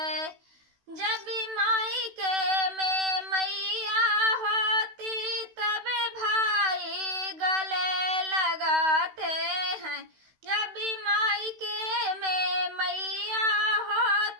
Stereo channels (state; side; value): late; left; 16 ms